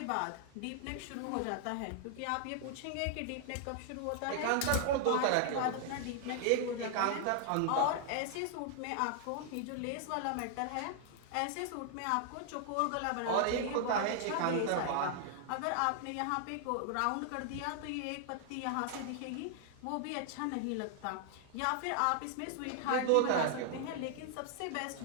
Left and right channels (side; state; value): both; different; correlation 0.00